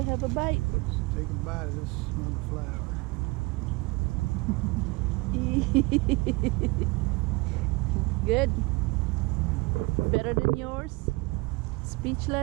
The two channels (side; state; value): left; quieter; 25.5 dB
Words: have a bite. let's take a bite of this mother flower. Good. Better than yours?